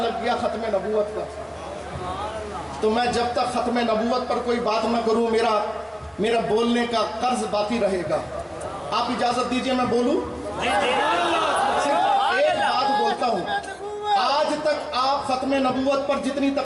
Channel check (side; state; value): both; identical; correlation 1.00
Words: گیا ختم نبوت کا، تو میں جب تک ختم نبوت پر کوئی بات نہ کروں میرا بولنے کا قرض باقی رہے گا۔ آپ اجازت دیجئے میں بولوں؟ صرف ایک بات بولتا ہوں، آج تک آپ ختم نبوت پر جتنی